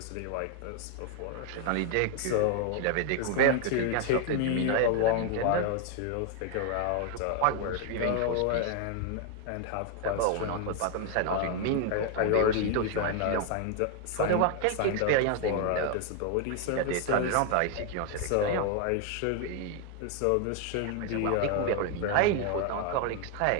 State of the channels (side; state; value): both; different; correlation 0.00